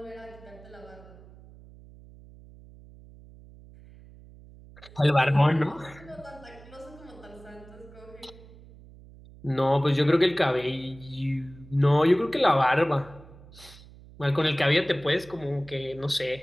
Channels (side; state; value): right; noise; hum, 21 dB below the sound